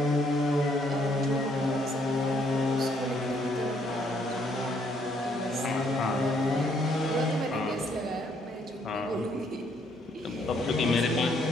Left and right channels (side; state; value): both; normal; correlation 0.69